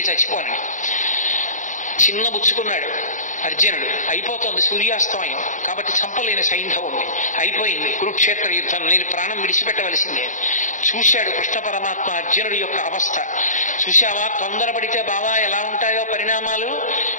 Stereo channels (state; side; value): late; right; 0.37 ms